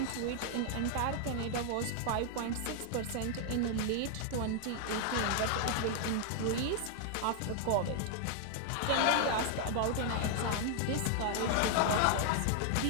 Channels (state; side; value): different; both; correlation 0.00